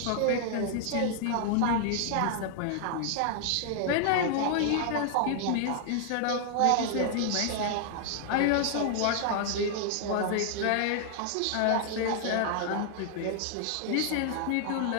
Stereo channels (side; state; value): both; different; correlation 0.00